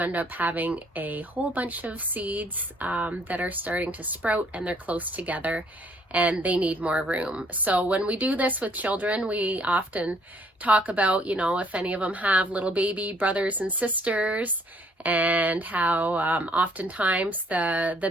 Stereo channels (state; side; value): normal; both; correlation 0.63